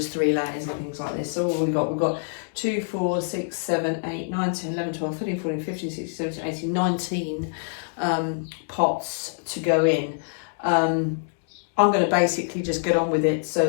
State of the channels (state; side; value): silent; right; digital silence